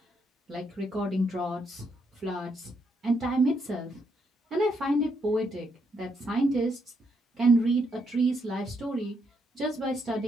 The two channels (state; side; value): normal; both; correlation 0.76